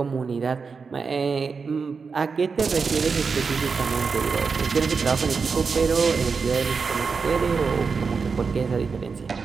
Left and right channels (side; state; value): left; quieter; 5.1 dB